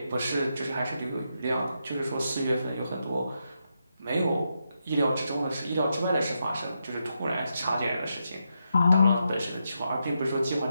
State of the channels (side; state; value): both; inverted; correlation -0.84